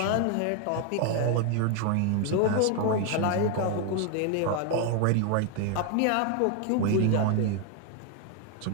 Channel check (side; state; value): both; different; correlation 0.01